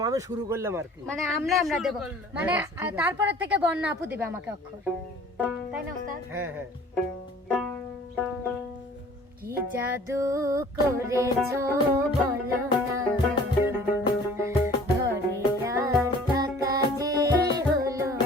আমি শুরু করলাম আর কি। মানে আমরা দেব, মানে তারপরে থেকে বন্যা আপু দিবে আমাকে অক্ষর, তাই না ওস্তাদ? হ্যাঁ হ্যাঁ। কি জাদু করেছো বলো না, ঘরে আর থাকা যে হলো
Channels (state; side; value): normal; both; correlation 0.50